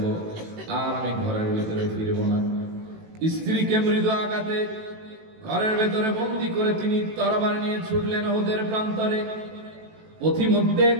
আর আমি ঘরের ভেতরে ফিরবো না। স্ত্রীকে মৃদু আঘাতে ঘরের ভেতরে বন্দী করে তিনি তরবারি নিয়ে ছুটলেন উহুদের প্রান্তরে। পথিমধ্যে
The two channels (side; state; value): left; late; 18 ms